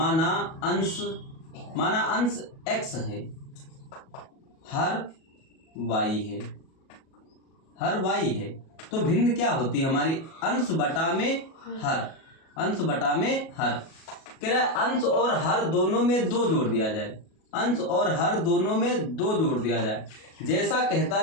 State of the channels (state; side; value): late; right; 37 ms